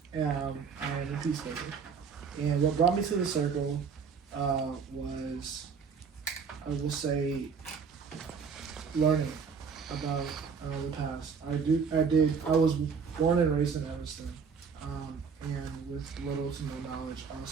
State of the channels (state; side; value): quieter; left; 5.9 dB